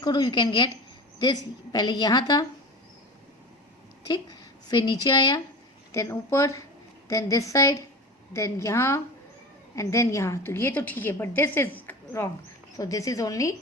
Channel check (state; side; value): normal; both; correlation 0.31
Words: करो, यू कैन गेट दिस. पहले यहाँ था, ठीक, फिर नीचे आया, देन ऊपर, देन दिस साइड, देन यहाँ, एंड देन यहाँ. तो ये तो ठीक है, but this is wrong. So this is only